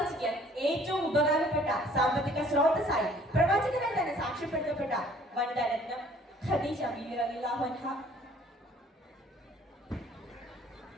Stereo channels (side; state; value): both; normal; correlation 0.56